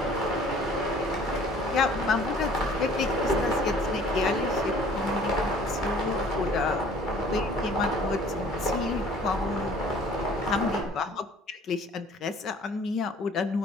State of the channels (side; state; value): both; normal; correlation 0.52